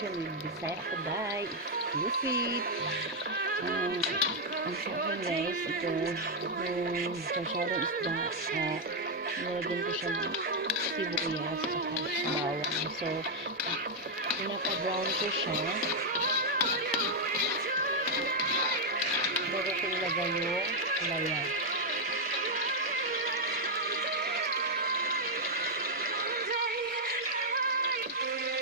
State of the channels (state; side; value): normal; both; correlation 0.00